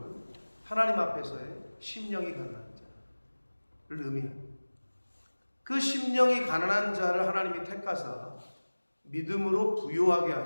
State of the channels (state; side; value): inverted; both; correlation -1.00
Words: 하나님 앞에서의 심령이 가난한 자를 의미합니다. 그 심령이 가난한 자를 하나님이 택하사 믿음으로 부요하게